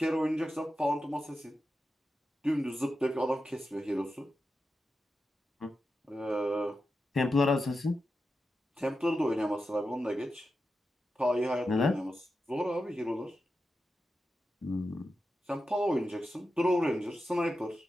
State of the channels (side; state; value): both; normal; correlation 0.90